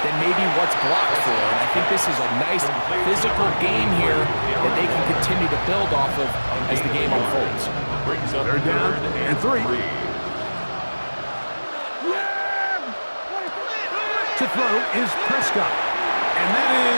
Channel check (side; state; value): both; inverted; correlation -1.00